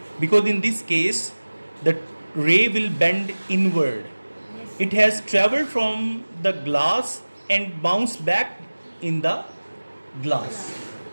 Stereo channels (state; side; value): inverted; both; correlation -1.00